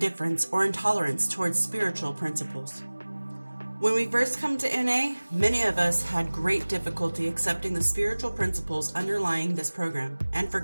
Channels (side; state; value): both; inverted; correlation -1.00